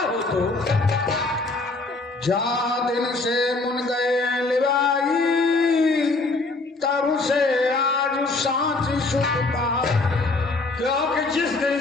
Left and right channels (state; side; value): quieter; right; 3.4 dB